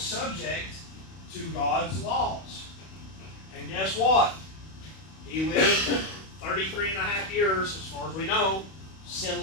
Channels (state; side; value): late; right; 31 ms